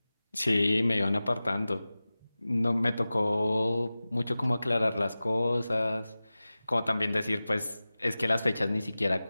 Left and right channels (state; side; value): inverted; both; correlation -0.97